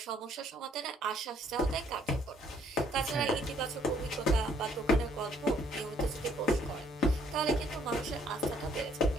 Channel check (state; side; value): normal; both; correlation 0.65